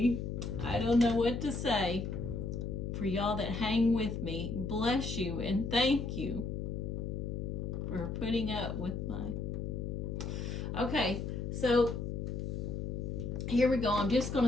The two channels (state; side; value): noise; left; hum, 3 dB below the sound